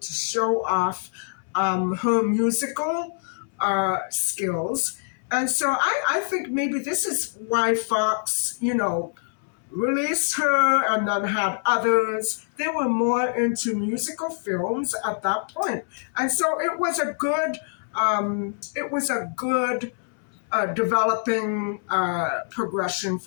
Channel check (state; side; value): silent; right; 62 dB below the other